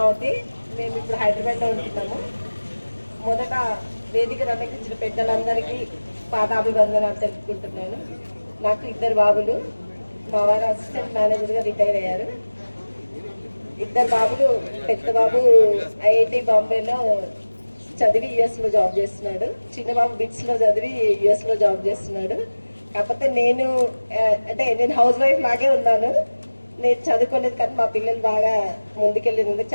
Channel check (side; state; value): both; inverted; correlation -1.00